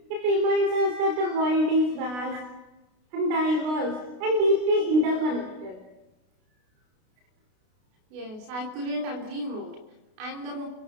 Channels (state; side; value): late; left; 32 ms